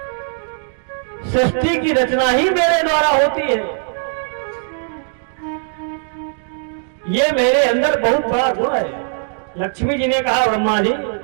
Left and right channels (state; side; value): silent; left; digital silence